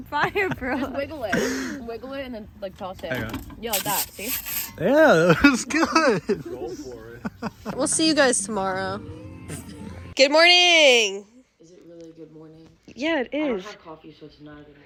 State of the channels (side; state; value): both; identical; correlation 1.00